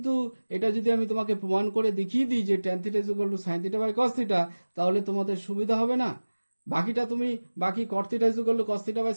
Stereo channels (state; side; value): inverted; both; correlation -1.00